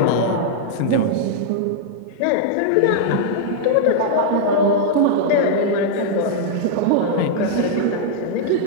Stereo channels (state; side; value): different; both; correlation -0.01